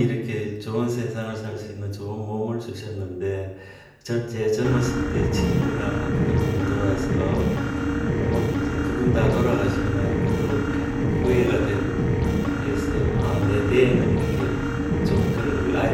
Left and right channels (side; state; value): both; identical; correlation 1.00